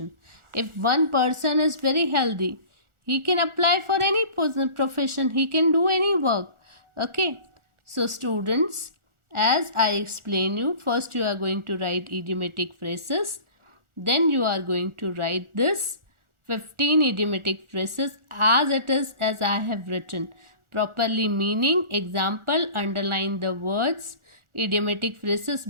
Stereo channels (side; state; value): left; late; 1.4 ms